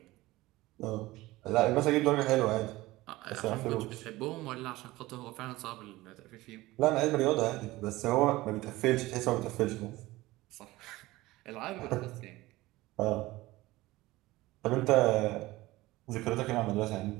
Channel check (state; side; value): quieter; left; 18.8 dB